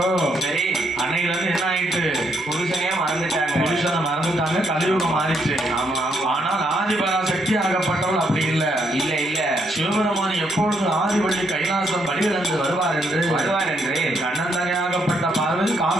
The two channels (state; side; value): normal; both; correlation 0.75